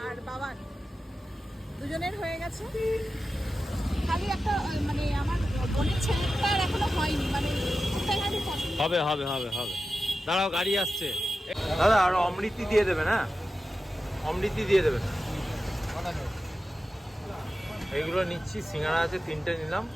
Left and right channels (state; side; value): normal; both; correlation 0.93